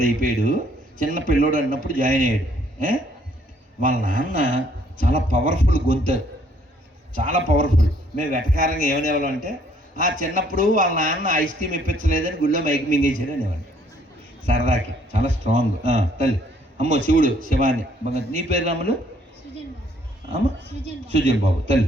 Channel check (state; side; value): normal; both; correlation 0.64